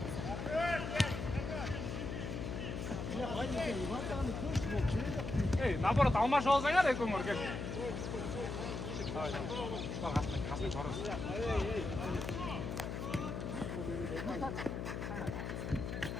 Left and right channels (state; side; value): noise; left; hum, 4 dB below the sound